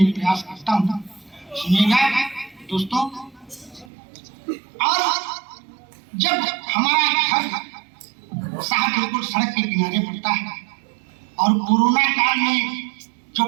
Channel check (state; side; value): drops out; left; at 3.9 s